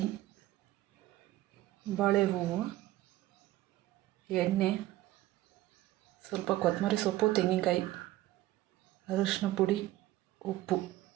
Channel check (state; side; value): quieter; left; 16.0 dB